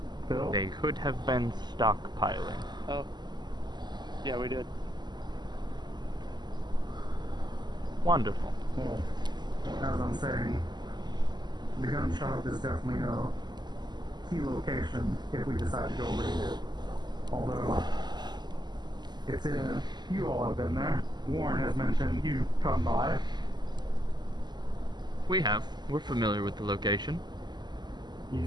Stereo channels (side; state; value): left; late; 0.21 ms